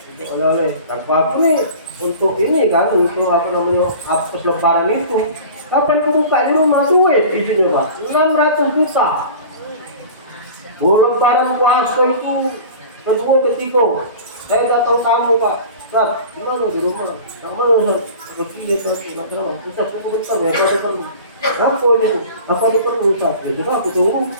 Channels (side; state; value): both; inverted; correlation -0.40